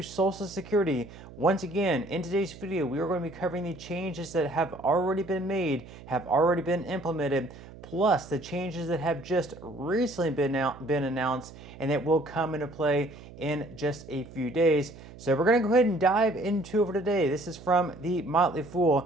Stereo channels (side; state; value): right; noise; hum, 17 dB below the sound